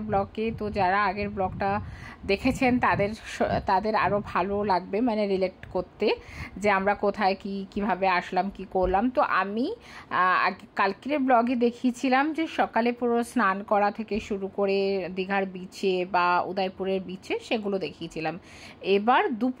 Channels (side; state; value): both; identical; correlation 1.00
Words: ব্লগে। তো যারা আগের ব্লগটা দেখেছেন তাদের আরও ভালো লাগবে, মানে রিলেট করতে, যে আমরা কোথায় কিভাবে আসলাম, কি করলাম। তো আমি কালকের ব্লগে দেখিয়েছিলাম যে সকালে পুরো স্নান করা থেকে শুরু করে দীঘার বিচে বা উদয়পুরের বিচে সেগুলো দেখিয়েছিলাম। এবার